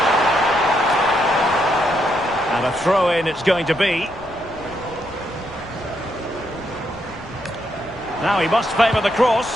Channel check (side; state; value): left; noise; rumble, 21 dB below the sound